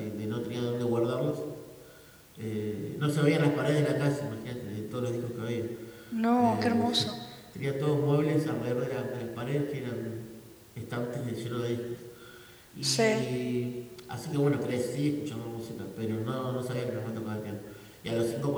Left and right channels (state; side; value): identical; both; correlation 1.00